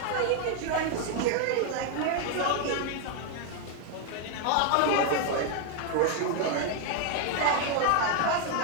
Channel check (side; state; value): both; different; correlation 0.01